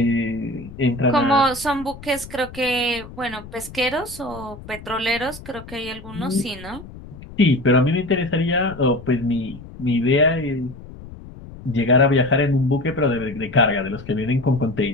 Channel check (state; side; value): noise; left; rumble, 16 dB below the sound